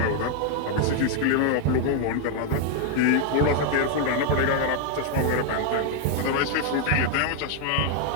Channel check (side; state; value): both; different; correlation 0.00